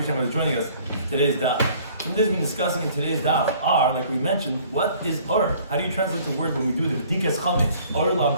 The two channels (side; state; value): both; inverted; correlation -0.55